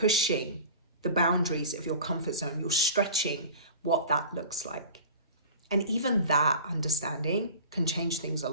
the boundaries of your comfort zone. You're stretching what that looks like. And even that understanding can change things a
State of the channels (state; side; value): inverted; both; correlation -0.38